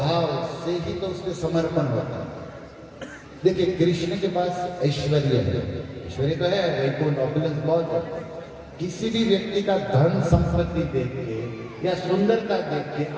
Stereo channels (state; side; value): identical; both; correlation 1.00